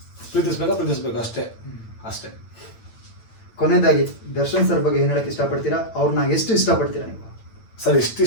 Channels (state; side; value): late; right; 8.9 ms